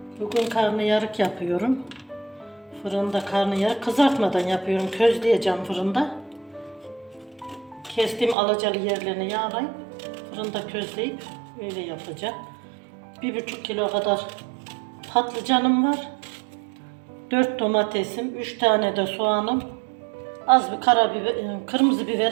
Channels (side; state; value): left; drops out; at 8.3 s